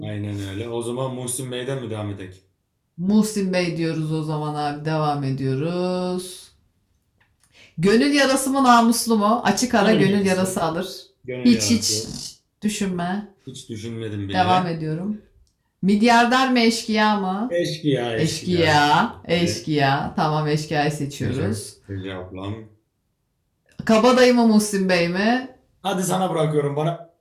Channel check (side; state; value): both; identical; correlation 1.00